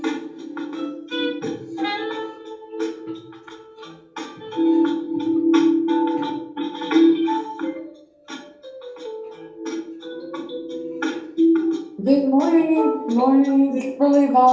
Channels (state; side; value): identical; both; correlation 1.00